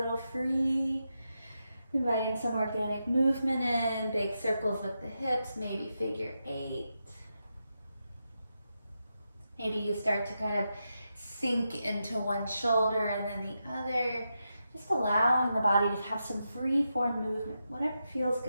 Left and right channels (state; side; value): inverted; both; correlation -0.87